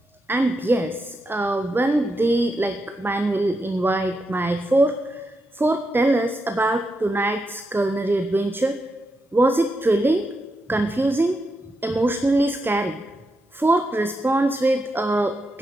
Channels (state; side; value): normal; both; correlation 0.85